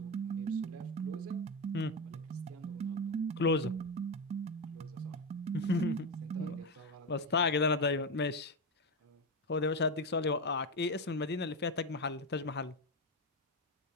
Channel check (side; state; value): both; normal; correlation 0.12